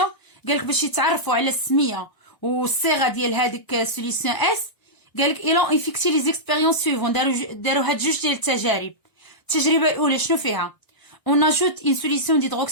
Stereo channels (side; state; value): right; late; 1.3 ms